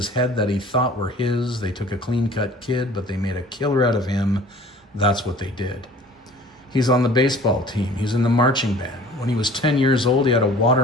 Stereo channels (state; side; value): normal; both; correlation 0.47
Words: head that he thought were his. They took a clean cut kid, but they made a killer out of him. That's what they did. He's on the baseball team. He's in the marching band. When he was 10 years old, he had a